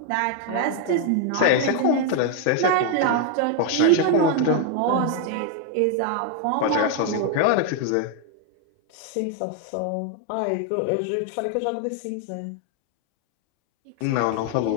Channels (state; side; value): different; both; correlation 0.00